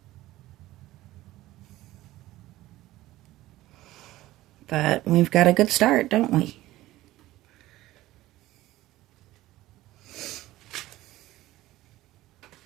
But we've got a good start, don't we?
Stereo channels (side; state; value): left; quieter; 16.4 dB